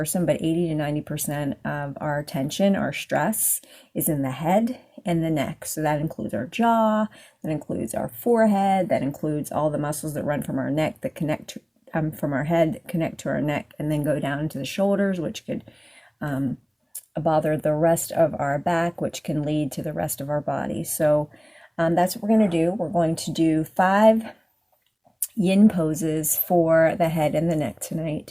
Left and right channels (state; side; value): identical; both; correlation 1.00